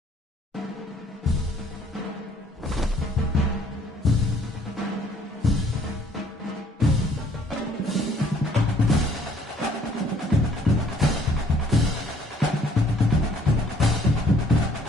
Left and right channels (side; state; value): both; normal; correlation 0.61